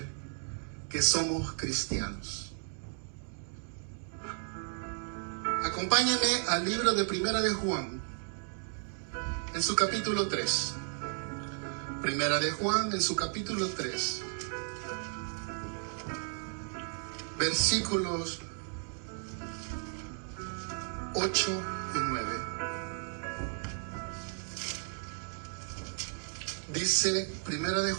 que somos cristianos. Acompáñame al libro de Primera de Juan, en su capítulo 3. Primera de Juan, en su capítulo 3. Versículos 8 y 9. Dice Primera de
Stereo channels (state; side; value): silent; left; 55 dB below the other